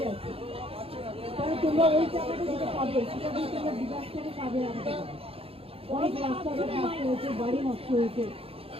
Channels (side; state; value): left; late; 0.28 ms